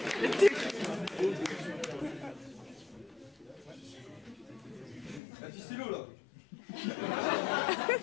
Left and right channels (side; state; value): right; drops out; at 5.2 s